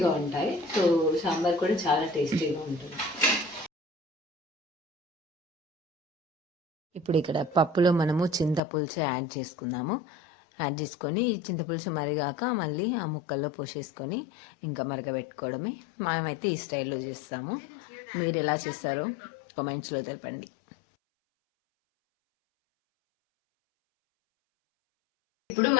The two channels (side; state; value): right; drops out; at 8.6 s